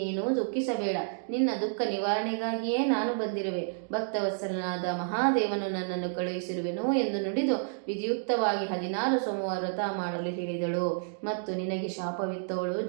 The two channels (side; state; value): left; silent; digital silence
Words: ದುಃಖಿಸಬೇಡ. ನಿನ್ನ ದುಃಖ ನಿವಾರಣೆಗಾಗಿಯೇ ನಾನು ಬಂದಿರುವೆ. ಭಕ್ತವತ್ಸಲನಾದ ಮಹಾದೇವನು ನನ್ನನ್ನು ಕಳುಹಿಸಿರುವೆನು ಎಂದು ನುಡಿದು ವಿಧಿಯುಕ್ತವಾಗಿ 16 ಸೋಮವಾರ ವ್ರತ ಮಾಡಲು ಹೇಳಿದಳು. ಮತ್ತು ನಿನಗೆ ಶಾಪವಿತ್ತವಳು